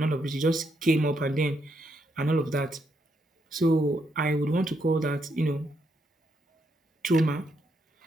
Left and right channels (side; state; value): both; normal; correlation 0.78